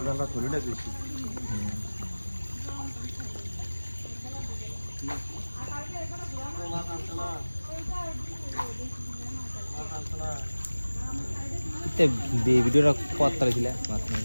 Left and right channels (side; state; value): both; inverted; correlation -1.00